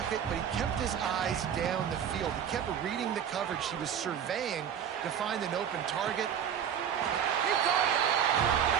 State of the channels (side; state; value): left; quieter; 8.6 dB